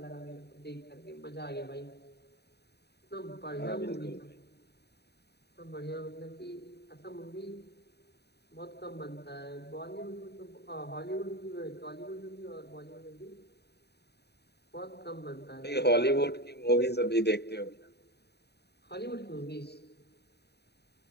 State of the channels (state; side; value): late; right; 0.48 ms